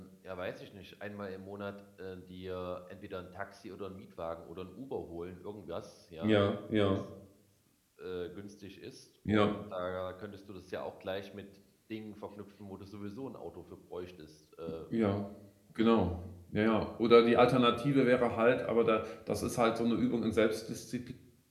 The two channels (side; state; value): both; identical; correlation 1.00